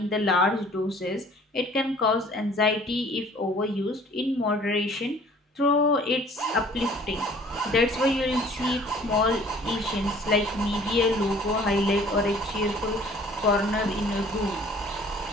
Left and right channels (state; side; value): normal; both; correlation 0.53